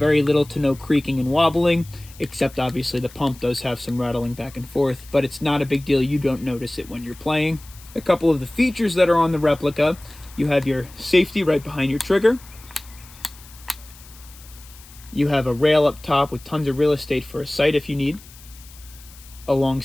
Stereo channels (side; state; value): left; noise; hiss, 21 dB below the sound